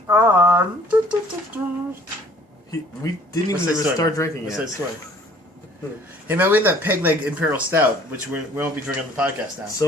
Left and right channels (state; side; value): normal; both; correlation 0.55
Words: on. We didn't even start drinking yet. What's that story? Hey man, we had that peg leg Imperial Stout, which we won't be drinking on the podcast now.